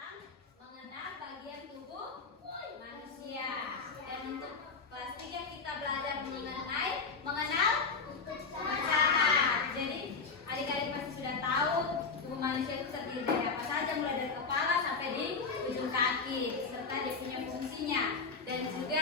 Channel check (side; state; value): right; quieter; 4.7 dB